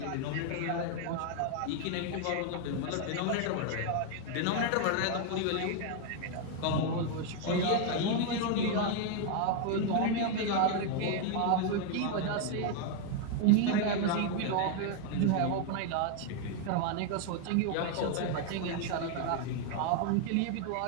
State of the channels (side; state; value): both; different; correlation 0.01